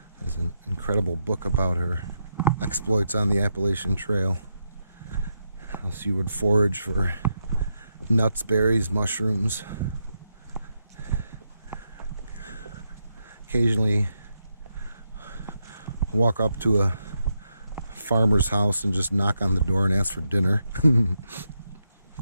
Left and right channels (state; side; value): inverted; both; correlation -0.82